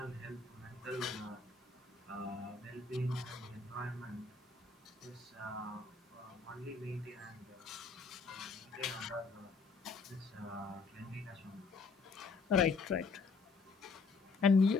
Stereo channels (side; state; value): right; quieter; 4.3 dB